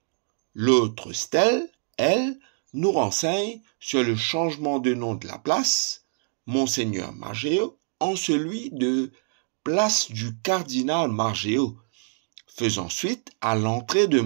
L'autre stèle, elle, nous renseigne sur le changement de nom de la place, Monseigneur Margéo, en celui de place du cardinal Margéo, faisant suite à l'entrée de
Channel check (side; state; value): left; silent; digital silence